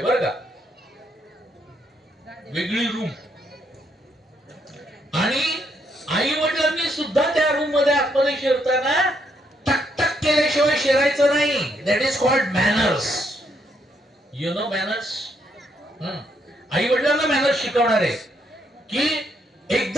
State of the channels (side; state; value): both; normal; correlation 0.75